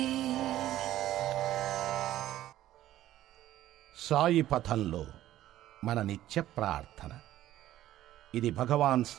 సాయి పథంలో మన నిత్య ప్రార్థన. ఇది భగవాన్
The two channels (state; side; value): quieter; left; 13.6 dB